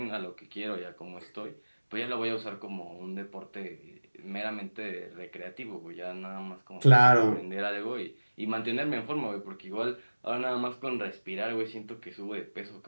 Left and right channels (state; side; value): inverted; both; correlation -1.00